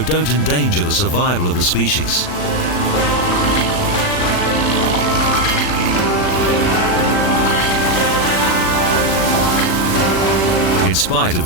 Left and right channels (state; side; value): late; right; 40 ms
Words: don't endanger the survival of the species. In spite of